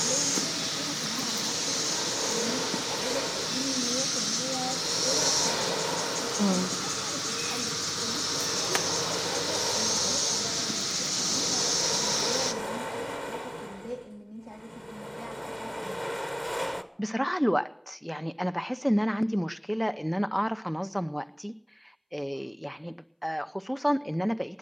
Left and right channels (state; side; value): identical; both; correlation 1.00